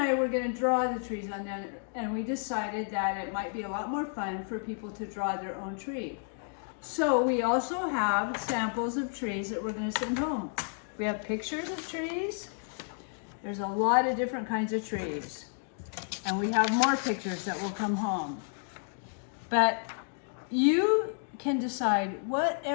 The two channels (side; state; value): right; silent; 57 dB below the other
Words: were going to draw the trees on that, and we decided that it might be a lot more fun for people to draw their own tree. So we also have samples of trees that we're going to send home. We have pictures of trees. There's a lot of different kinds of trees. And we have more pictures that will come home. But you can decide